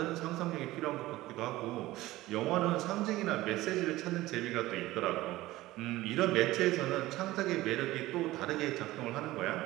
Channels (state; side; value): quieter; left; 17.4 dB